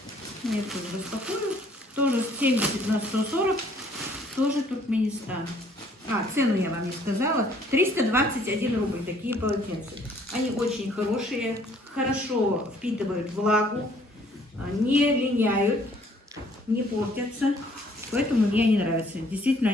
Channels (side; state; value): both; normal; correlation 0.61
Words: Я тоже распакую. Тоже 70 на 140, тоже Туркменистан. Цену я вам не сказала. 321 рубль такие полотенца. Они очень хорошие, хорошо впитывают влагу, не линяют, не портятся. Поэтому мне они нравятся. Действительно,